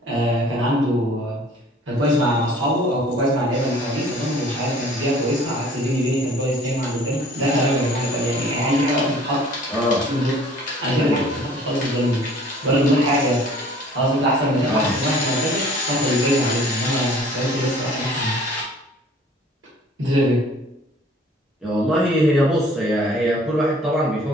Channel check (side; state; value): both; normal; correlation 0.52